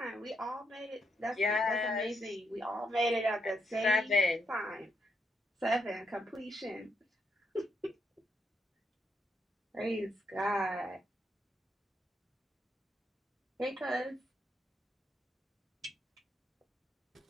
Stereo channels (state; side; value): normal; both; correlation 0.78